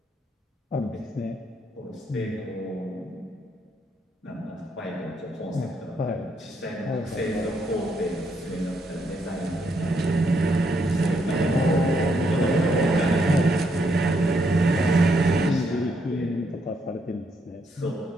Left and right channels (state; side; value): normal; both; correlation 0.75